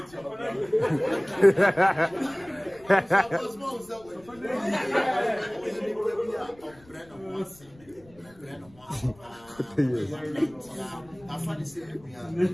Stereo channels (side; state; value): left; noise; rumble, 26 dB below the sound